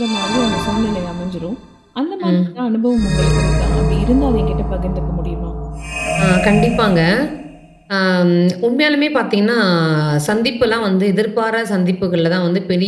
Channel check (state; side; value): identical; both; correlation 1.00